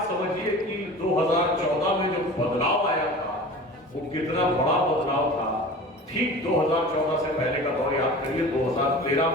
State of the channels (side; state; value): both; normal; correlation 0.38